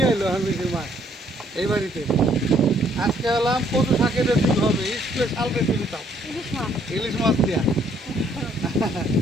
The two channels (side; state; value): both; normal; correlation 0.66